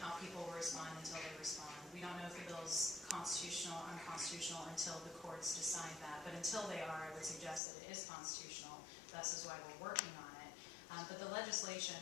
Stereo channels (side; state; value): right; drops out; at 7.6 s